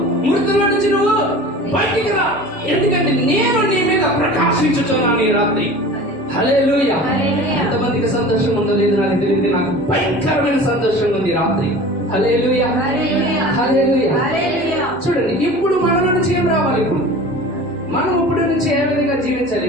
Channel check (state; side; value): normal; both; correlation 0.39